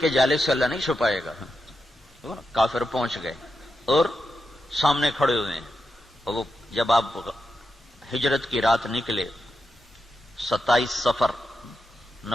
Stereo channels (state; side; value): normal; both; correlation 0.88